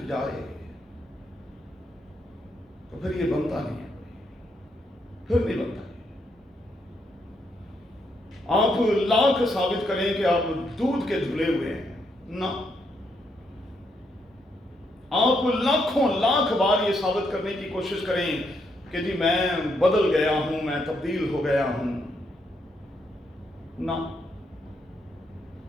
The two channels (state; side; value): normal; both; correlation 0.77